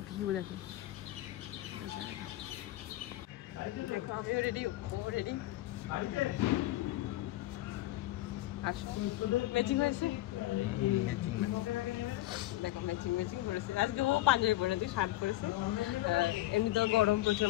ভিউ দেখো। দেখো আমিও রেডি, ও রেডি। আসো ম্যাচিং হয়েছে। দেখো ম্যাচিং করেছে। আজকে ও পাঞ্জাবি পরে, তুই শার্ট পরেছে। এমনিতেও গরম প্রচুর।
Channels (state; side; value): quieter; right; 16.4 dB